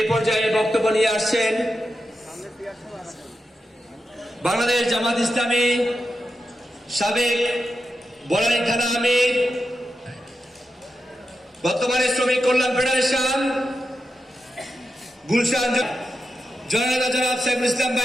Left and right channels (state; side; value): normal; both; correlation 0.89